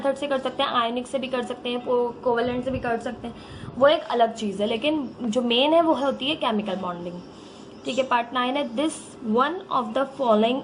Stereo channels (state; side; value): identical; both; correlation 1.00